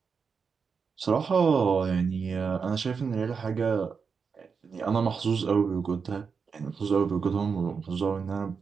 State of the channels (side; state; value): left; quieter; 5.7 dB